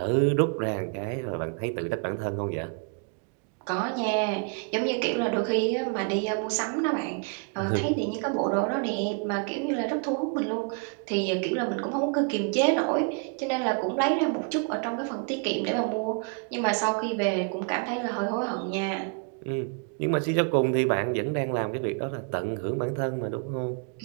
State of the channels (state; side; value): quieter; left; 37.7 dB